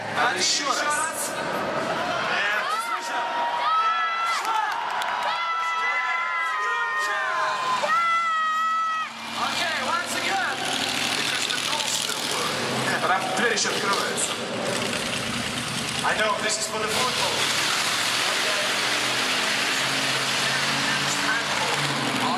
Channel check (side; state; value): both; identical; correlation 1.00